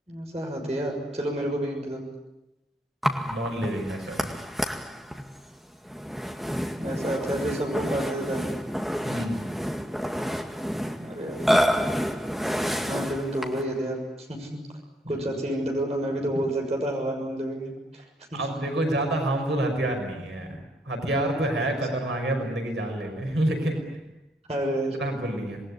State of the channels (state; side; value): normal; both; correlation 0.75